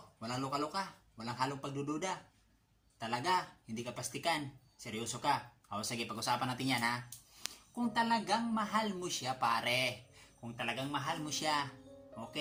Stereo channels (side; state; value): both; identical; correlation 1.00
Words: Walang luka-luka? Walang halong pagdududa? Talaga? Hindi ka pastikan? Seryoso ka? O sige, pag-usapan natin yan ha. Kung talagang mahal mo siya pare, kung talagang mahal mo siya,